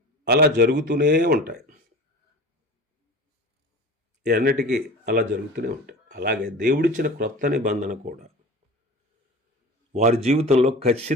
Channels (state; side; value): normal; both; correlation 0.37